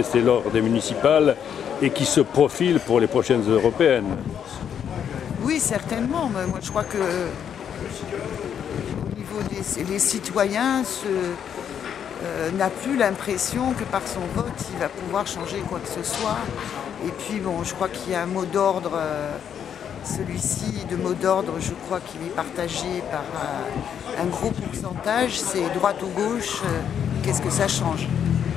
lors des municipales et qui se profile pour les prochaines européennes? Oui, certainement. Mais moi, je crois que au niveau des citoyens, n'a plus l'impression que par son vote, il va pouvoir changer quoi que ce soit. Et puis, bon, je crois qu'il y a un mot d'ordre, celui-ci de mot d'ordre, je crois qu'il est partagé par un gros pourcentage, c'est droite ou gauche, qu'est-ce que ça change?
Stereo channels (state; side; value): quieter; right; 8.5 dB